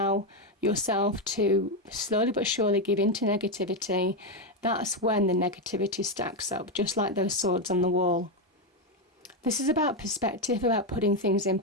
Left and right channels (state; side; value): normal; both; correlation 0.07